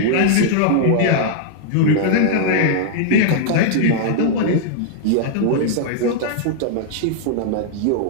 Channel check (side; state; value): both; different; correlation -0.01